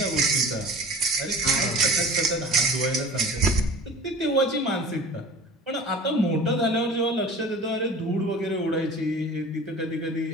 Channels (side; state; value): both; normal; correlation 0.40